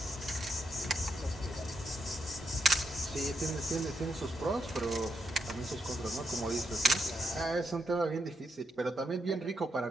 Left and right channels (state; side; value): normal; both; correlation 0.81